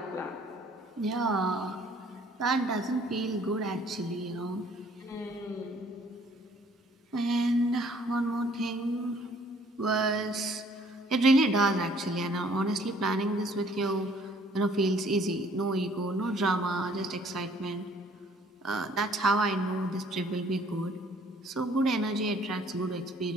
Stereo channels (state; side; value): normal; both; correlation 0.59